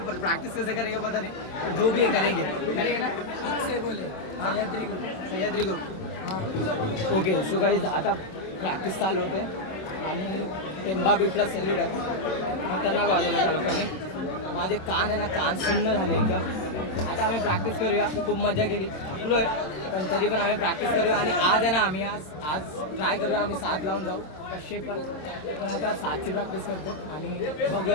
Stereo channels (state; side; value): late; right; 26 ms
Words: पर प्रैक्टिस कैसे करेंगे पता नहीं, पर जो भी है करेंगे ना. से बोले सह्याद्री ग्रुप हां ओके. सो गाईज आता प्रॅक्टिस चालू होते आणि टेंबा बीचला सेल्यूट आहे. खतरनाक वाजवलं त्या लोकांनी. माझे कान आहे ना, कान सुन्न झाले एकदम. आता आम्ही प्रॅक्टिस करूया. खूप मजा केली, थकलो आहे पण तरी पण आम्ही प्रॅक्टिस करूया. आणि आज आहे ना आम्ही आज ट्राय करूया आम्ही 7 लावून जाऊ कसे पण आता 7ची प्रॅक्टिस करतो आणि